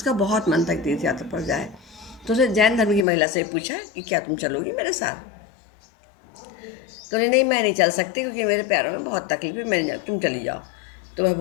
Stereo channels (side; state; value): right; drops out; at 3.1 s